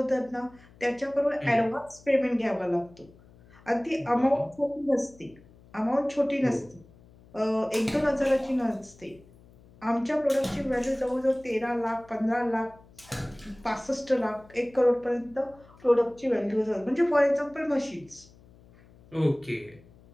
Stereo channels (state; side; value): noise; left; hum, 25 dB below the sound